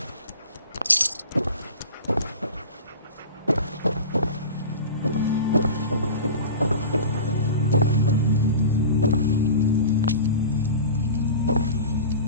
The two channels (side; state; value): both; inverted; correlation -0.34